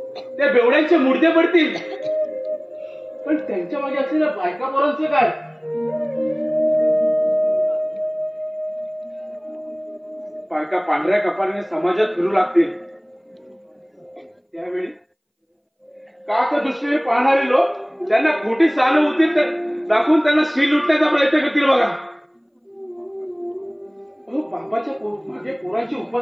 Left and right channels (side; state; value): both; identical; correlation 1.00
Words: त्या बेवड्यांचे मुर्दे पडतील, पण त्यांच्या मागे असलेल्या बायका पोरांचं काय? बायका पांढऱ्या कपाळाने समाजात फिरू लागतील, त्यावेळी काक दृष्टीने पाहणारे लोक त्यांना खोटी सहानुभूती दाखवून त्यांना शील लुटण्याचा प्रयत्न करतील बघा. अहो, बापाच्या मागे पोरांची